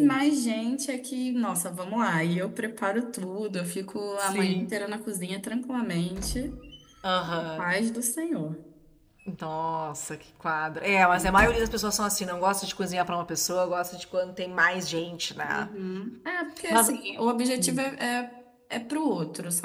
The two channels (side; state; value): both; identical; correlation 1.00